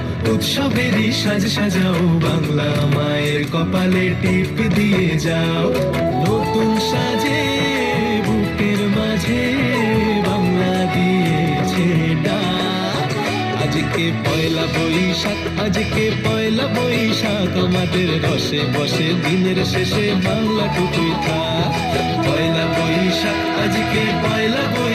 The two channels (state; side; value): identical; both; correlation 1.00